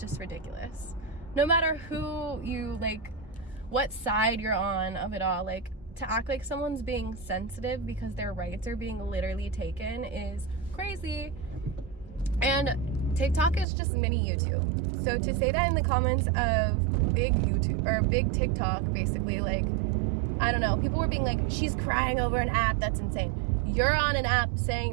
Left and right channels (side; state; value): left; drops out; at 13.7 s